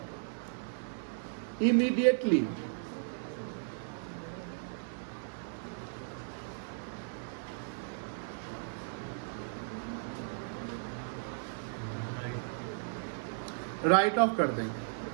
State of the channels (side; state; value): left; silent; digital silence